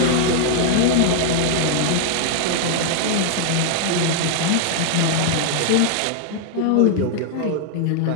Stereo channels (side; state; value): both; different; correlation -0.01